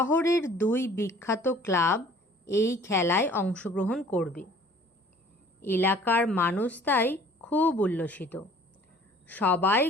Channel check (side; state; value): both; normal; correlation 0.52